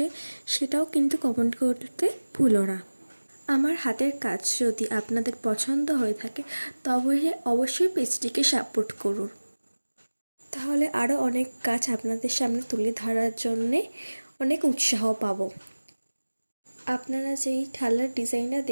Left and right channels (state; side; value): inverted; both; correlation -1.00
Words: সেটাও কিন্তু কমেন্ট করতে ভুলো না। আমার হাতের কাজ যদি আপনাদের পছন্দ হয়ে থাকে তবে অবশ্যই পেজটিকে সাপোর্ট করুন। তাহলে আরও অনেক কাজ আপনাদের সামনে তুলে ধরার জন্যে অনেক উৎসাহ পাবো। আপনারা যেই থালার ডিজাইনটা